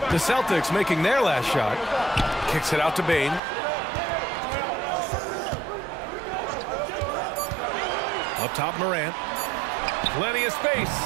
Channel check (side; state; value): left; drops out; at 3.4 s